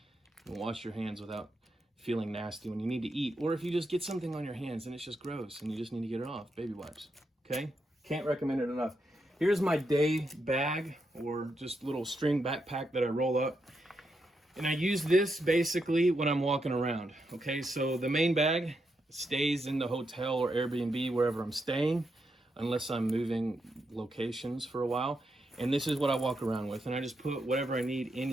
wash your hands without feeling nasty when you need to eat, or if you just get something on your hands and it's just gross and you just need to get it off. Baby wipes, okay? Can't recommend it enough. Here's my day bag, or just little string backpack that I roll up, and I use this basically when I'm walking around, okay? So the main bag stays in the hotel or Airbnb wherever I'm staying, unless I'm moving locations for a while. And this is what I walk around with. And I just put whatever I need in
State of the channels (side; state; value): both; normal; correlation 0.82